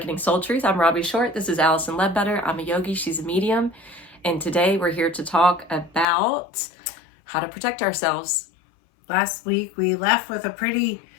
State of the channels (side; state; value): right; drops out; at 6.1 s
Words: Soul Truth. I'm Robbie Short. This is Allison Ledbetter. I'm a yogi. She's a medium. And today we're here to talk about how to protect ourselves. Last week we left with a pretty